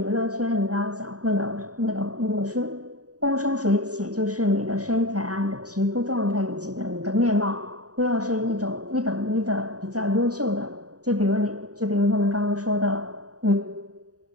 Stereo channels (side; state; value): left; late; 0.67 ms